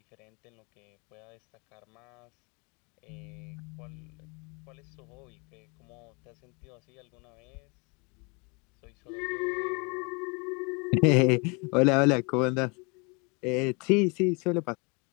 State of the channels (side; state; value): right; quieter; 31.4 dB